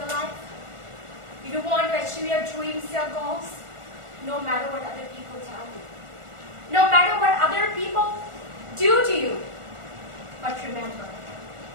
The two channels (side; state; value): left; late; 1.4 ms